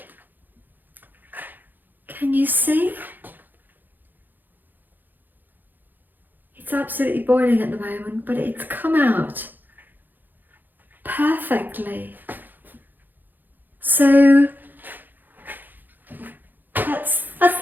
Can you see? It's absolutely boiling at the moment, but it's come out perfectly. So that's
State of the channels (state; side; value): late; left; 0.088 ms